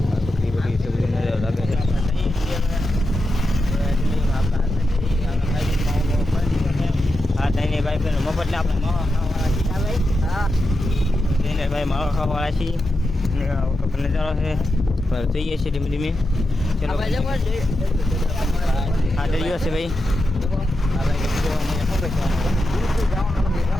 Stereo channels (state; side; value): normal; both; correlation 0.88